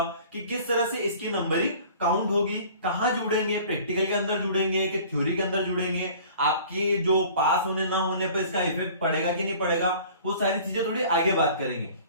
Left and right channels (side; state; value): both; inverted; correlation -0.47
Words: कि किस तरह से इसकी नंबरिंग काउंट होगी, कहां जुड़ेंगे, प्रैक्टिकल के अंदर जुड़ेंगे कि थ्योरी के अंदर जुड़ेंगे, आपकी जो पास होने ना होने पर इसका इफेक्ट पड़ेगा कि नहीं पड़ेगा, वो सारी चीजें थोड़ी आगे बात करेंगे।